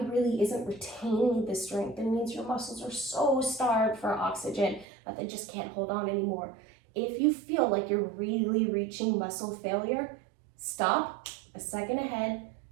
really isn't retaining the strength. It means your muscles are so starved for oxygen that they just can't hold on anymore. If you feel like you're really reaching muscle failure, stop, a second ahead,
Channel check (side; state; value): left; drops out; at 4.9 s